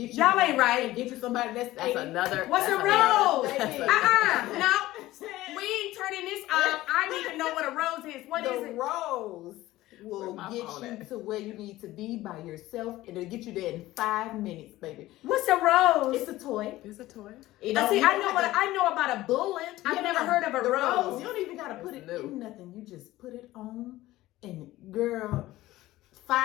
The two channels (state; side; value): quieter; right; 16.6 dB